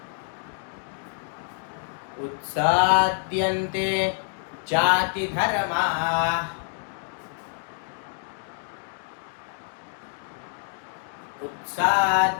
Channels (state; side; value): silent; right; 60 dB below the other